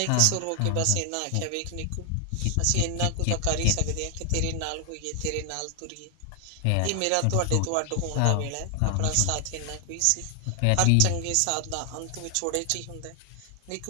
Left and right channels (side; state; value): both; different; correlation 0.00